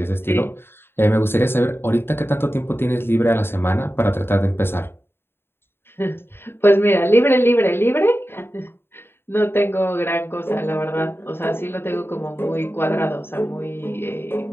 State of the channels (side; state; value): right; late; 0.11 ms